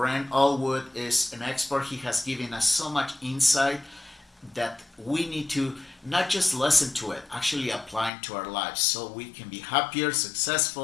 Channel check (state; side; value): drops out; right; at 8.1 s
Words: Allgood is an expert. He has given us so much insight that we need to not just listen to it, actually apply it to our lives so we can be happier,